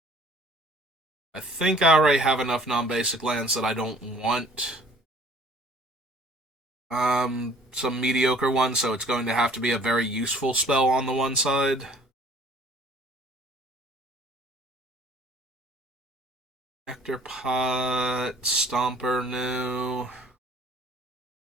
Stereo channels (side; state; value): both; normal; correlation 0.54